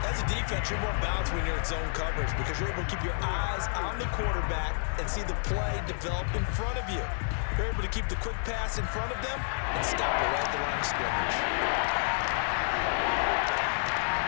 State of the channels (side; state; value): right; silent; 58 dB below the other